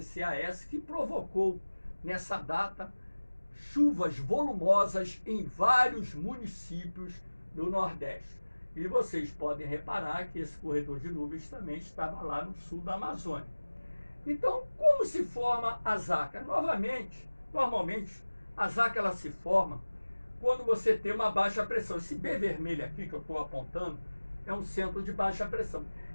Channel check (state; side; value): inverted; both; correlation -1.00